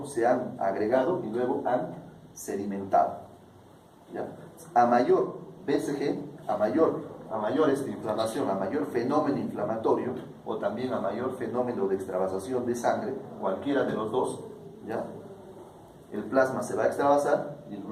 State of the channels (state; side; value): identical; both; correlation 1.00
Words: se han agregado y luego han sedimentado? ¿Ya? A mayor BCG, a mayor inflamación, a mayor fenómeno inflamatorio, o también a mayor fenómeno de extravasación de sangre, cualquiera de los dos, ¿ya? El plasma se va a extravasar y los